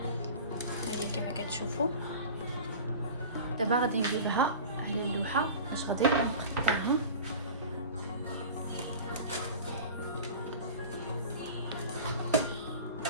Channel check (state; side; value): inverted; both; correlation -0.37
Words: هاهي كما كتشوفوا. دابا غادي نجيبها على اللوحه باش غادي نقطعها.